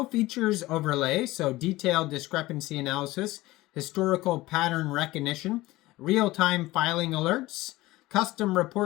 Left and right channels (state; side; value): quieter; right; 18.5 dB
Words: features overlay, so detailed discrepancy analysis, historical pattern recognition, real-time filing alerts, custom